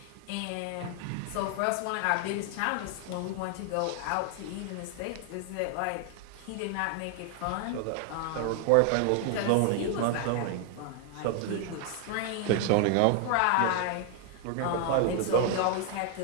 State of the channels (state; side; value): different; both; correlation 0.00